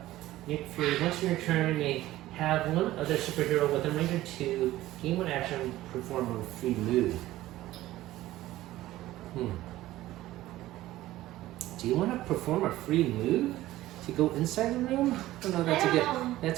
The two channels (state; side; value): quieter; left; 15.8 dB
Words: For once in your turn, you may have one other superhero with a range of 2, gain 1 action, perform a free move. Do you want to perform a free move to go inside the room? I don't know.